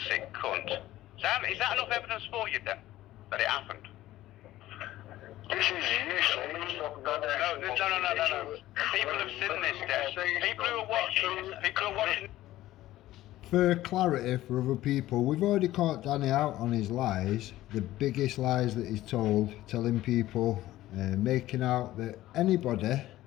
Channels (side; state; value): right; quieter; 15.2 dB